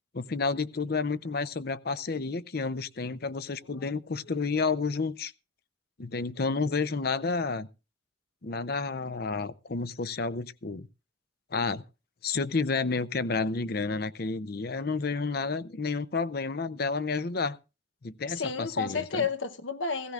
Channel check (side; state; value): right; quieter; 4.0 dB